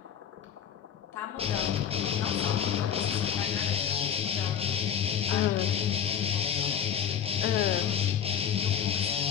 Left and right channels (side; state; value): right; quieter; 8.6 dB